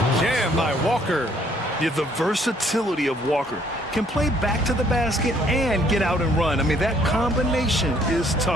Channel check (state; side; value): normal; both; correlation 0.64